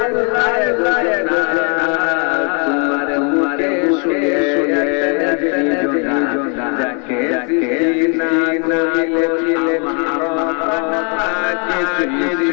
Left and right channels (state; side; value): quieter; right; 37.6 dB